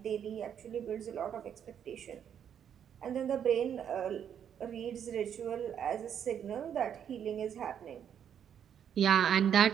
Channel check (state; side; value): quieter; left; 8.7 dB